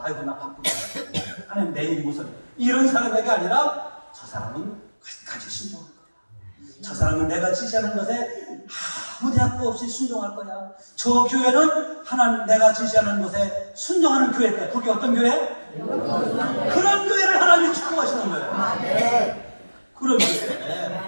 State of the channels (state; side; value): inverted; both; correlation -1.00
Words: 아이고 나 바쁘다. 하나님 내일이 무슨 이런 사람에게 아니라 저 사람은 끝까지 순종할 거야. 저 사람은 내가 지시하는 것에 아무 대학도 없이 순종할 거야. 저 교회는 하나님 내가 지시하는 것에 순종하는 교회일 거야. 그게 어떤 교회? 그런 교회를 하나님이 축복하시는 거예요. 그런